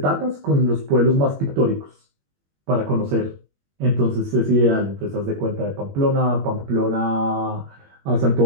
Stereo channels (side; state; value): left; late; 21 ms